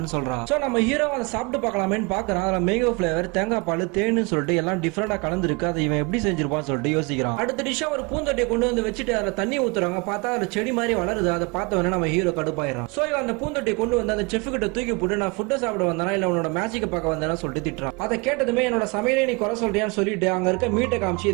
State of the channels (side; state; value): left; quieter; 28.7 dB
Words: சொல்றான். சோ நம்ம ஹீரோ அதை சாப்பிட்டு பார்க்கலாமேன்னு பாக்குறான். அதுல மேங்கோ பிளேவர், தேங்காய் பால், தேன்னு சொல்லிட்டு எல்லாம் டிஃபரெண்டா கலந்துருக்கு. அதை இவன் எப்படி செஞ்சிருப்பான்னு சொல்லிட்டு யோசிக்கிறான். அடுத்த டிஷ்ஷா ஒரு பூந்தொட்டியை கொண்டு வந்து வச்சுட்டு அதுல தண்ணி ஊத்துறாங்க. பார்த்தா அதுல செடி மாதிரி வளருது. அதை பார்த்தவனே நம்ம ஹீரோ கடுப்பாயிடும். சோ இவன் அந்த பூந்தொட்டியை கொண்டு வந்து அந்த செஃப் கிட்ட தூக்கி போட்டு நான் ஃபுட்டை சாப்பிட வந்தானா இல்ல உன்னோட மேஜிக் பார்க்க வந்தேன்னு சொல்லிட்டு திட்டுறான். அதை கேட்டதுமே என்னோட சமையலை நீ குறை சொல்றியான்னு சொல்லிட்டு அங்க இருக்க மீட்டை காமிச்சு